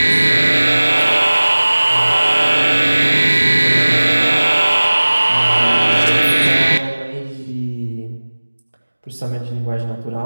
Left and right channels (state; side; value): inverted; both; correlation -1.00